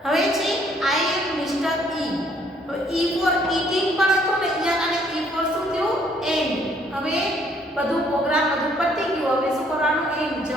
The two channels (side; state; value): both; normal; correlation 0.65